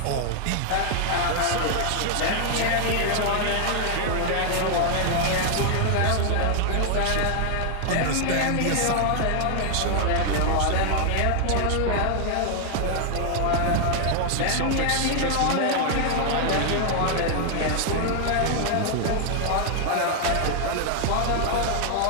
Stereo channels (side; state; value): both; different; correlation 0.00